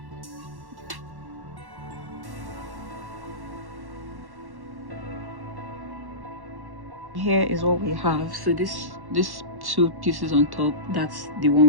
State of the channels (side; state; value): left; late; 1.1 ms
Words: Here is what we have. So this two pieces on top, that's the